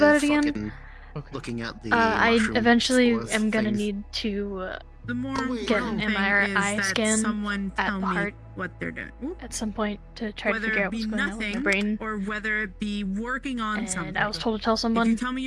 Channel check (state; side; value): identical; both; correlation 1.00